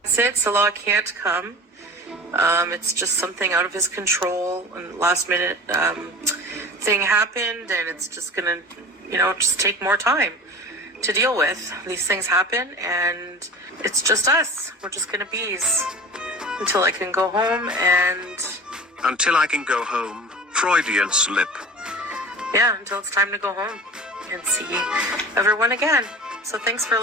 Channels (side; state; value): both; normal; correlation 0.36